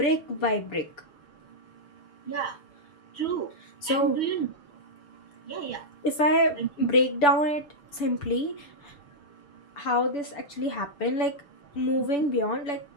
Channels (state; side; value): late; right; 7.0 ms